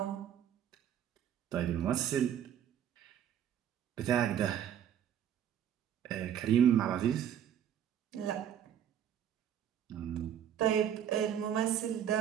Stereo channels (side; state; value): left; quieter; 9.7 dB